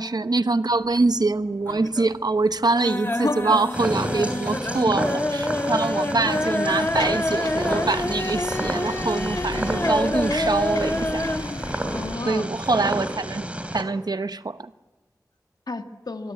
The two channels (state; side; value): normal; both; correlation 0.72